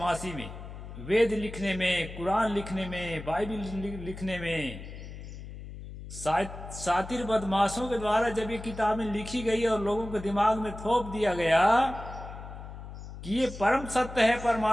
में, वेद लिखने में, कुरान लिखने में, बाइबल लिखने में। सातिर बदमाशों के द्वारा जब ये किताबें लिखी गई और लोगों के दिमाग में थोप दिया गया कि ये परम सत्य है,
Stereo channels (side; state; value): left; noise; hum, 12 dB below the sound